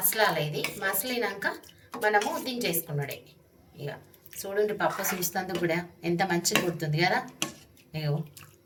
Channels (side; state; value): both; identical; correlation 1.00